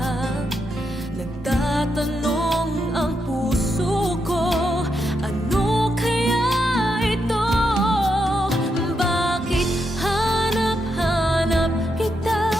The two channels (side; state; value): both; normal; correlation 0.82